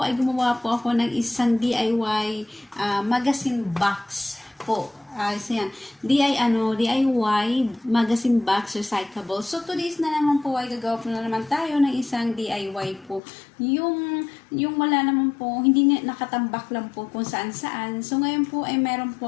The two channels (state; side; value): drops out; right; at 13.2 s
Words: ay gumawa po ako ng isang DIY magazine box po. So yan, DIY magazine box recyclable. So today's na naman po ay gagawa po na naman tayo ng isang DIY po. Yung wala naman po, hindi nakatambak lang po kung saan saan. So ngayon po ay meron